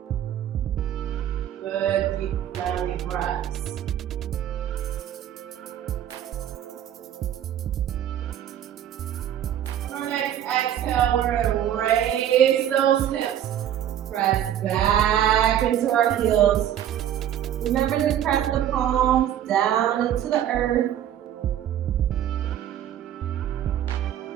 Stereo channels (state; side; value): quieter; left; 10.7 dB